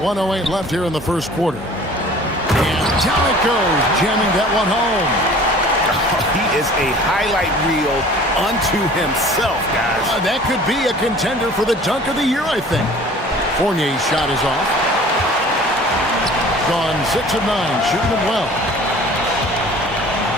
left here in the first quarter. And down it goes, jamming that one home. He is a highlight reel unto himself, guys. That could be a contender for the dunk of the year, I think. Fournier's shot is off. Gone 6 of 9, shooting it well.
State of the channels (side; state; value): both; normal; correlation 0.47